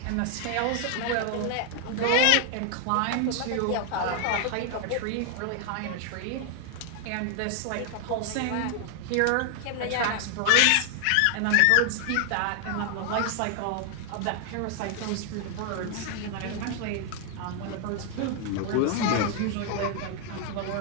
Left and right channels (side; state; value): both; different; correlation 0.00